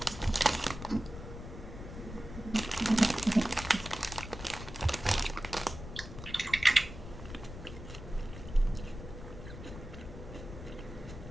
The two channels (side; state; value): left; noise; rumble, 11 dB below the sound